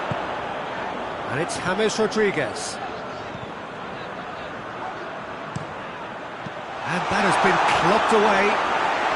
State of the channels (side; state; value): both; identical; correlation 1.00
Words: And it's James Rodriguez. And that has been clubbed away.